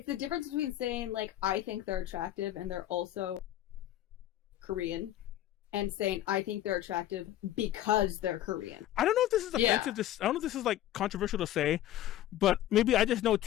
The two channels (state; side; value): quieter; right; 13.1 dB